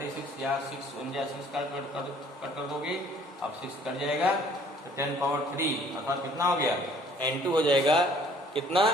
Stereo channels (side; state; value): both; normal; correlation 0.57